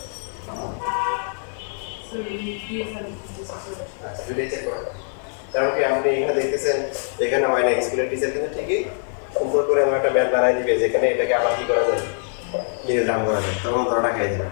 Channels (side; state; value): right; silent; digital silence